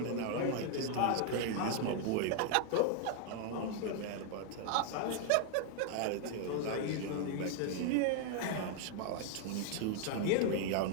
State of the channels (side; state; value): both; different; correlation 0.00